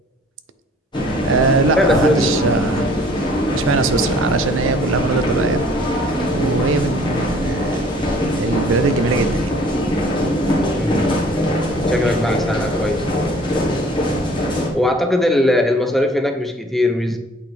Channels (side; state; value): both; normal; correlation 0.54